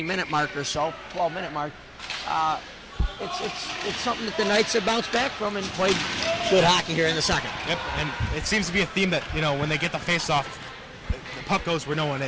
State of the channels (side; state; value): both; identical; correlation 1.00